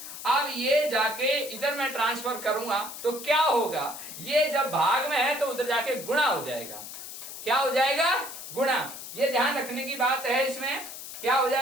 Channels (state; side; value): noise; left; hiss, 11 dB below the sound